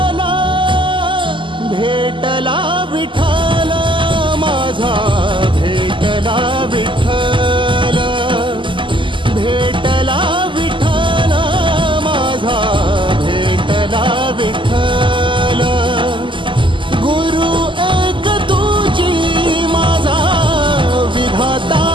भेटला विठ्ठल माझा, भेटला विठ्ठल, भेटला विठ्ठल माझा, भेटला विठ्ठल, गुरु एक तुझी माझा विधाता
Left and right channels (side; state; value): left; late; 0.24 ms